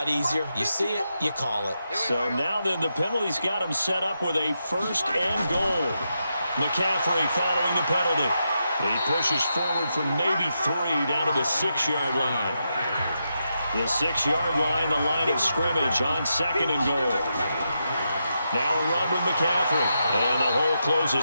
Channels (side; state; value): both; inverted; correlation -0.85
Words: easier. You see it, you call it. So now then, the penalty's got him set up with a 1st and goal. McCaffrey following the penalty. He pushes forward from maybe 3 down to the 6-yard line. The 6-yard line, the line of scrimmage on 2nd and goal. Now a run with McCaffrey. And the hole